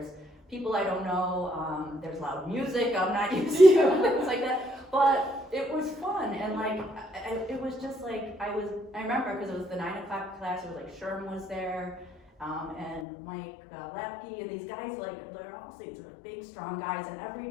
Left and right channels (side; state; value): right; drops out; at 13.1 s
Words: people I don't know. There's loud music I'm not used to. Things like that. But it was fun, and like it was just like I remember because it was the 9 o'clock class. It was like Sherm was there. And Mike Lapke and these guys, like they're all these like big, strong guys. And